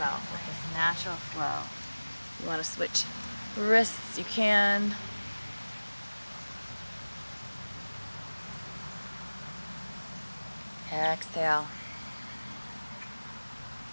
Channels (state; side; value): inverted; both; correlation -1.00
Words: with this natural flow. You want to switch wrists, you can. Exhale.